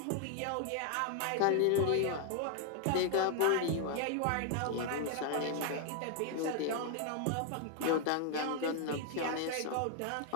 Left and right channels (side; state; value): both; different; correlation 0.00